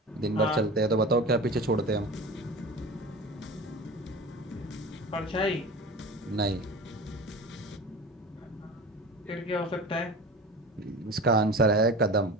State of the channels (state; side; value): normal; both; correlation 0.34